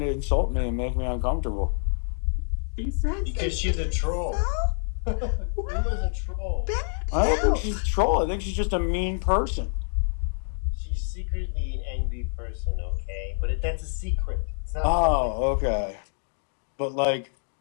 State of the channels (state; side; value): silent; right; 60 dB below the other